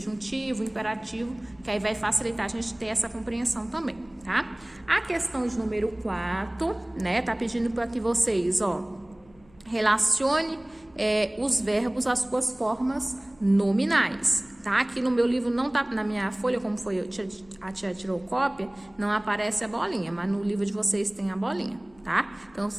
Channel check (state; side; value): noise; left; hum, 28 dB below the sound